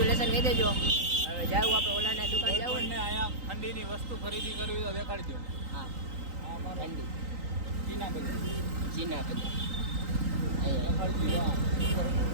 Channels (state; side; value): late; left; 3.9 ms